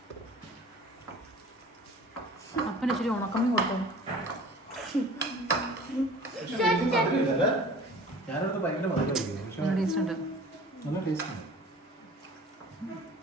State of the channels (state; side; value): normal; both; correlation 0.45